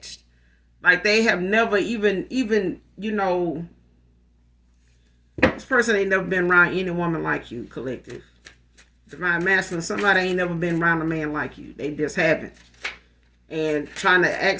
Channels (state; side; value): identical; both; correlation 1.00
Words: Like they have never even this person ain't never been around any woman like you, collective. Divine masculine, somebody ain't never been around a man like you. They just haven't. And trying to ask